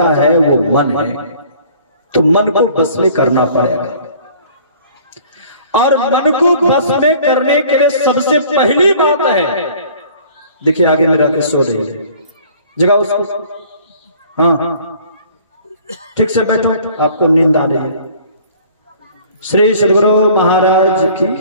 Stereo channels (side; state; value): both; inverted; correlation -0.52